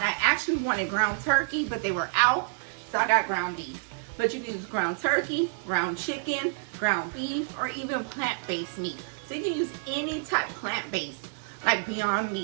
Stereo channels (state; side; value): silent; left; digital silence